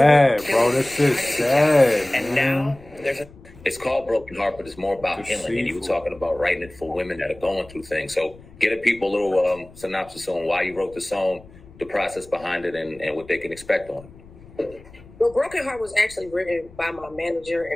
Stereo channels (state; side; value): noise; left; rumble, 22 dB below the sound